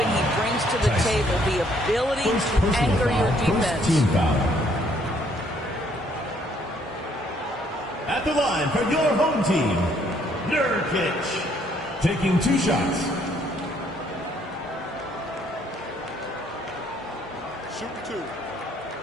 he brings to the table, the ability to anchor your defense. At the line for your home team, Nurkic, taking 2 shots. Shoot 2.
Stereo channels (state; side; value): normal; both; correlation 0.66